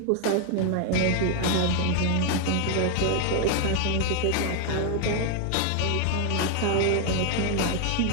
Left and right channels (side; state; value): both; different; correlation 0.01